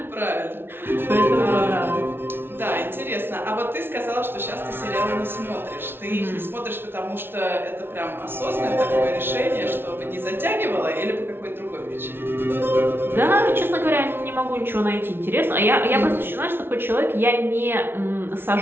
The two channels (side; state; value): left; late; 0.11 ms